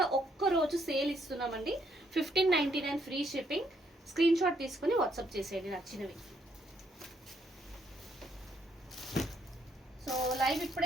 ఒక్కరోజు సేల్ ఇస్తున్నామండి. 1599 ఫ్రీ షిప్పింగ్. స్క్రీన్ షాట్ తీసుకుని వాట్సాప్ చేసేయండి నచ్చినవి. సో లైవ్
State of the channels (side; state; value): both; normal; correlation 0.72